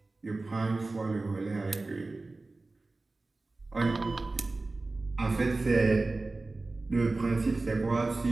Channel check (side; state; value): left; quieter; 3.3 dB